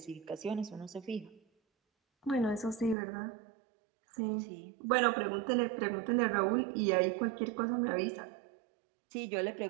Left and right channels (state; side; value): drops out; left; at 3.0 s